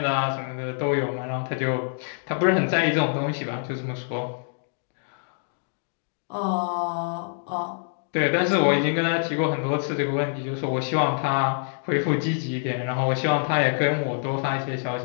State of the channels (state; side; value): silent; right; digital silence